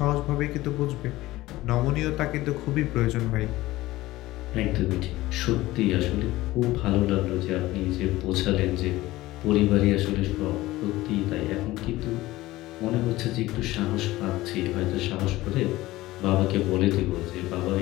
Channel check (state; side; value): quieter; right; 17.6 dB